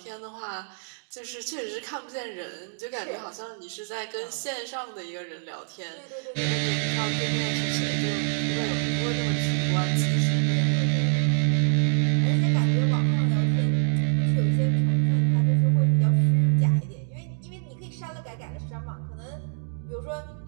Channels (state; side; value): silent; left; digital silence